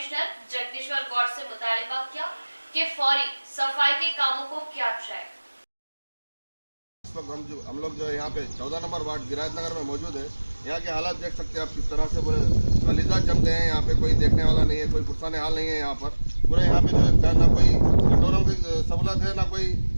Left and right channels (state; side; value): inverted; both; correlation -1.00